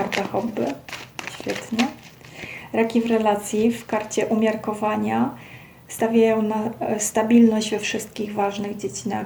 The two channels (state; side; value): identical; both; correlation 1.00